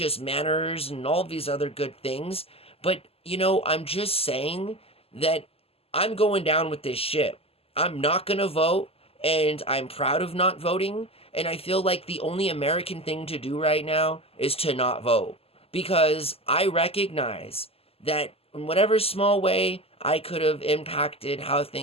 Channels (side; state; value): right; late; 0.28 ms